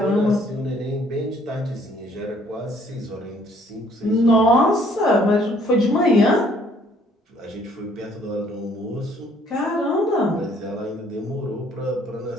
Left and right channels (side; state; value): both; normal; correlation 0.62